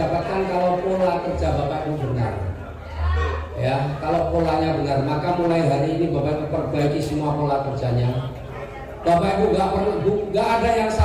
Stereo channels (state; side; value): identical; both; correlation 1.00